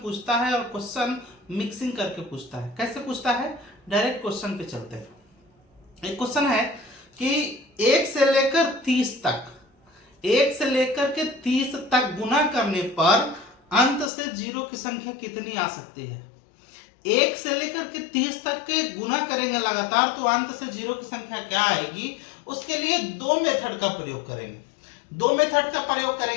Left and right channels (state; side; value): drops out; right; at 14.1 s